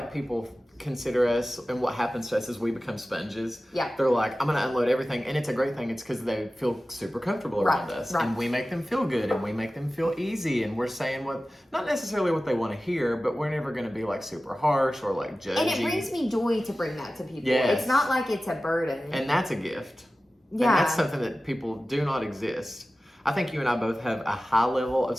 people consider us, and what happens to us is we become sponges. Yeah. They're like, I'm gonna unload everything, and it's a great thing. It's because they feel super comfortable around us, and we make them feel good, and we make them feel easy, and we're saying not necessarily what they want to hear, but we're never gonna be like super harsh or like judgy. And it brings me joy to bring that to people. Yes. It's not like it's a burden. And that's a gift. Yeah. And that's something that people do not exist. I think you and I both have a high level of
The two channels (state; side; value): normal; both; correlation 0.96